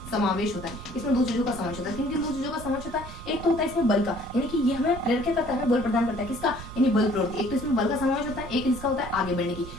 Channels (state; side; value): noise; right; rumble, 13 dB below the sound